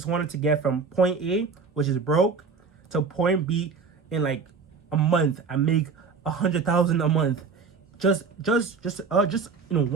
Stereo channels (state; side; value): quieter; left; 5.1 dB